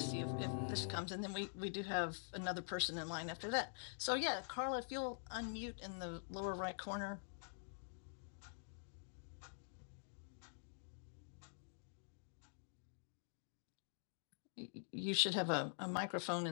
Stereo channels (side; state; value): right; silent; digital silence